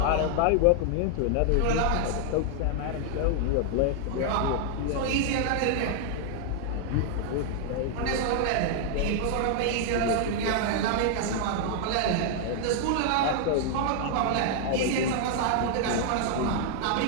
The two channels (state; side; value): different; both; correlation 0.00